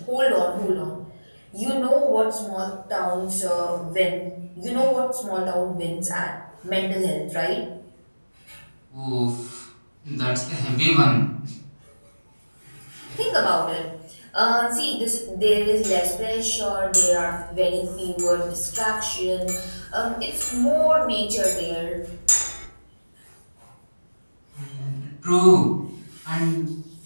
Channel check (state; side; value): inverted; both; correlation -1.00